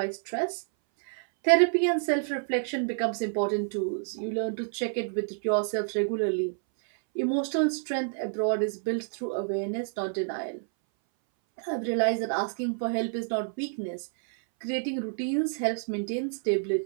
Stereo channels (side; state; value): left; silent; 59 dB below the other